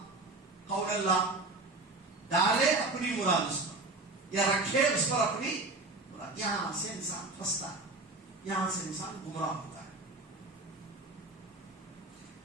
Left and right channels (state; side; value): quieter; left; 3.2 dB